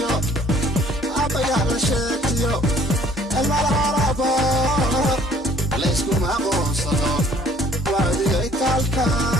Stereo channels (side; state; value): both; normal; correlation 0.58